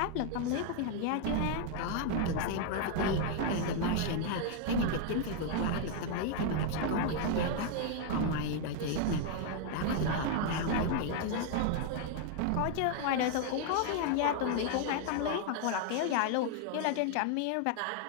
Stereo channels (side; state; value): both; different; correlation 0.00